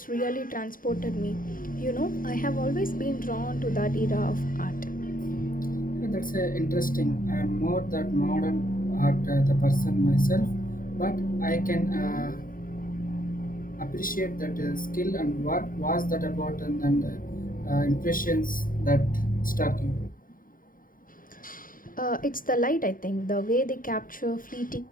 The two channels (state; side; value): late; right; 0.40 ms